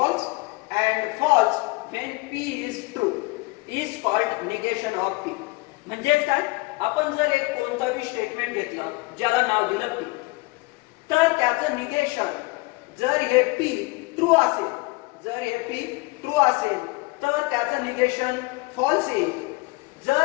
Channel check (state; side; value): quieter; right; 24.7 dB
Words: and false when P is true is called negation of P. म्हणजे काय आपण जर एक कोणताही statement घेतलं ज्याला नाव दिलं P तर त्याचं निगेशन जर हे P ट्रू असेल जर हे P ट्रू असेल तर त्याचं निगेशन फॉल्स येईल.